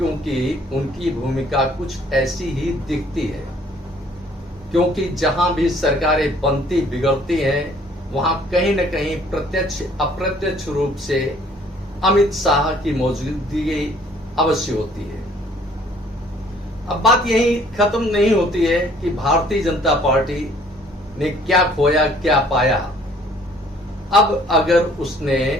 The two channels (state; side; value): normal; both; correlation 0.58